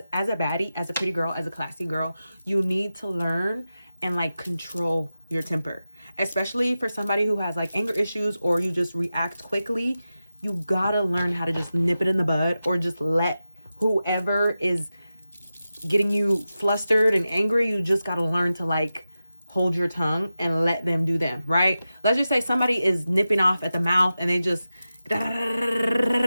as a baddie, as a pretty girl, as a classy girl, you need to learn and like control your temper, especially for somebody who has like anger issues or you just react quickly. You gotta learn how to just nip it in the bud, or just let whoever is getting you flustered and angry, you just gotta learn to like hold your tongue and let them do them, right? Let's just say somebody is nipping off at the mouth and they just,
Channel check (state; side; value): inverted; both; correlation -0.93